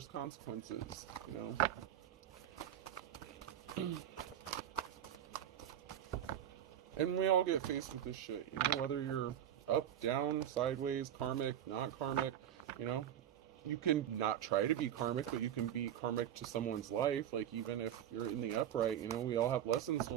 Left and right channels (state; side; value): quieter; left; 10.6 dB